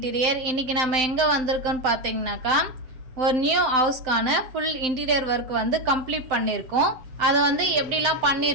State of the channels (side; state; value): left; late; 7.8 ms